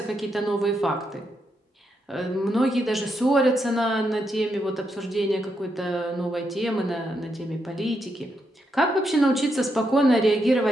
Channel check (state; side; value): normal; both; correlation 0.81